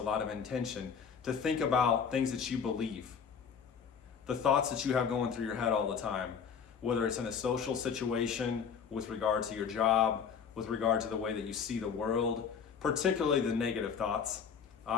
lot of intention to think about things that you believe, the thoughts that you have going through your head all the time, whether it's in a social situation, with regard to your job, with regard to the way that you see the world, particularly the negative thoughts.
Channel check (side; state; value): right; quieter; 6.8 dB